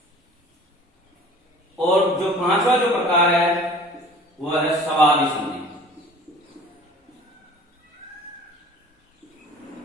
और जो पांचवा जो प्रकार है वह है स्वादि संधि।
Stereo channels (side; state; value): both; normal; correlation 0.46